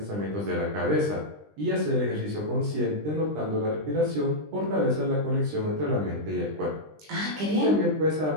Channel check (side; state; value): left; late; 20 ms